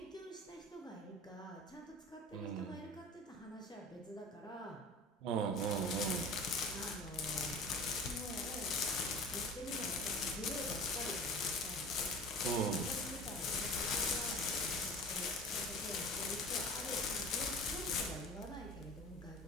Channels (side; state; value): both; normal; correlation 0.39